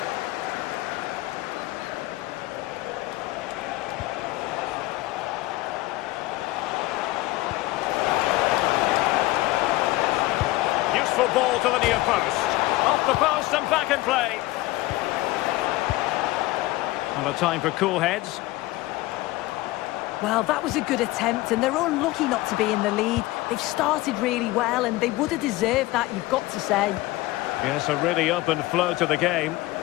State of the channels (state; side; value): quieter; right; 18.9 dB